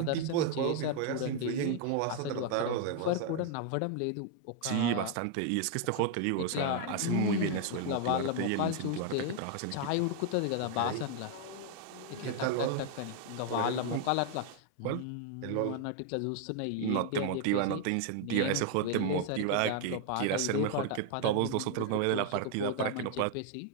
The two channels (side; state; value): both; different; correlation 0.00